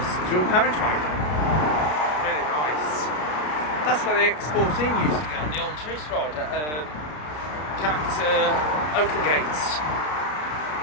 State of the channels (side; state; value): right; late; 33 ms